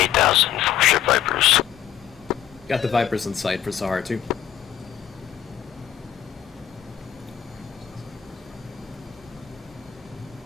4 ship Vipers. Got the Vipers in sight for Sahara 2.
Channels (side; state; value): right; quieter; 9.9 dB